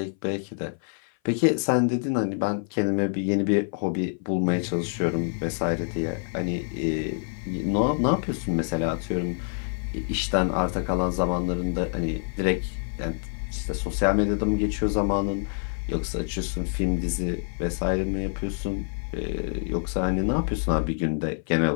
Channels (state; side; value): silent; right; 57 dB below the other